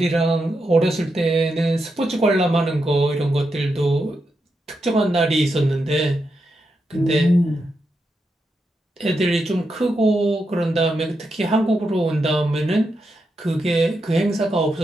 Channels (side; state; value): both; normal; correlation 0.85